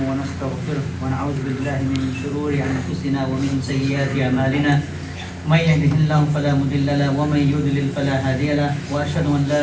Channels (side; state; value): both; identical; correlation 1.00